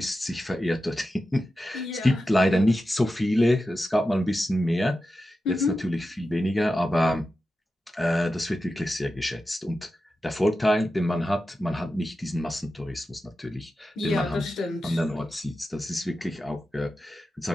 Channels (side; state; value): both; normal; correlation 0.92